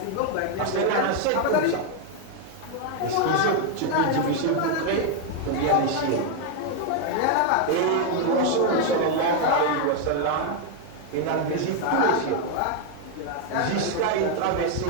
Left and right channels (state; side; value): different; both; correlation 0.01